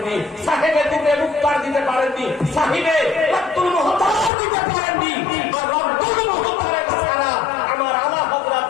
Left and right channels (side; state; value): right; drops out; at 4.3 s